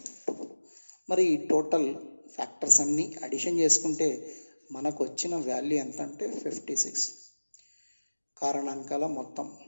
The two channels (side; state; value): both; inverted; correlation -1.00